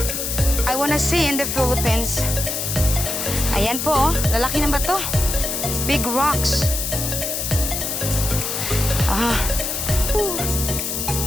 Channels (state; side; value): noise; left; hiss, 2 dB below the sound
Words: I wanna see in the Philippines. Ayan po, lalaki ng bato. Big rocks.